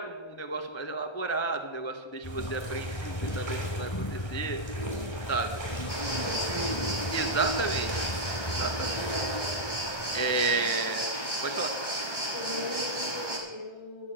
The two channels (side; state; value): right; late; 1.3 ms